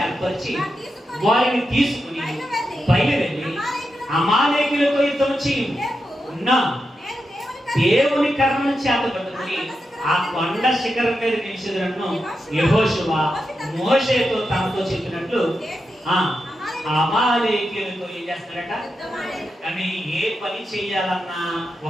ఏర్పరిచి వారిని తీసుకుని బయలుదేరి అమాలేకీయులతో యుద్ధం చేయున్నా దేవుని కర్రను చేత పట్టుకుని ఆ కొండ శిఖరం మీద నిలిచినట్టు యెహోషువ మోషేతో తనతో చెప్పినట్లు అమాలేకీయులతో ఏం చేస్తాడట? కానీ ఏ పని చేయాలన్నా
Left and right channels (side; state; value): both; normal; correlation 0.88